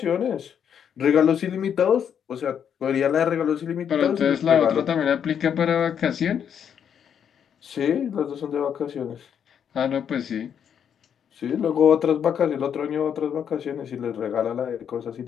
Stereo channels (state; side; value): quieter; right; 8.3 dB